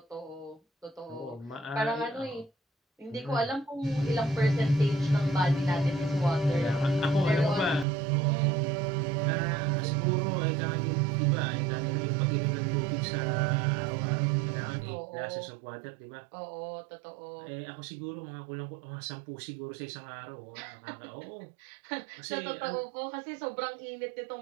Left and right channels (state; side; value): drops out; left; at 7.9 s